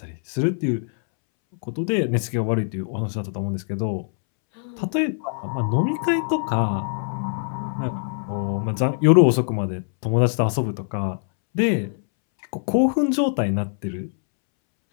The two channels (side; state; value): right; silent; 63 dB below the other